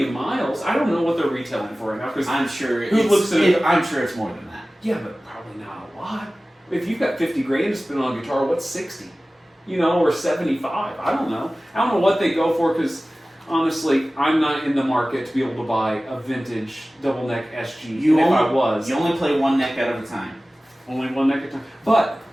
miles. I don't know what they're retailing for right now because I'm sure. I'm sure it's more than that. yeah, but probably not a lot. If you've got 50 grand to spend on a guitar, what's 60? Or 75. I don't know. I don't know what they go for because honestly, I'm not in the market to be able to buy a vintage double neck SG. You only play one neck at a time. only one neck at a time. But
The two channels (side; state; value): both; normal; correlation 0.97